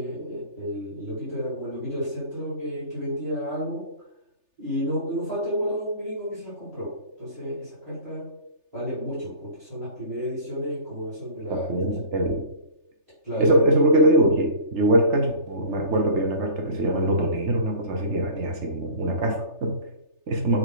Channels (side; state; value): left; late; 3.3 ms